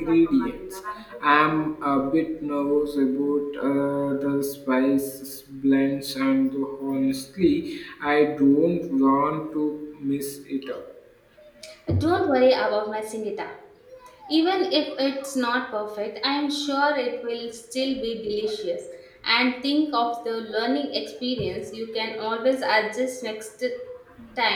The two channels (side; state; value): both; identical; correlation 1.00